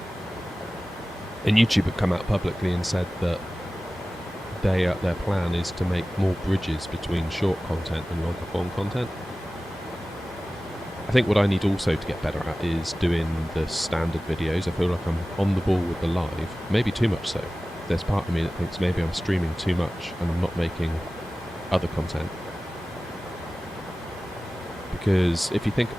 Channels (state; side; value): normal; both; correlation 0.96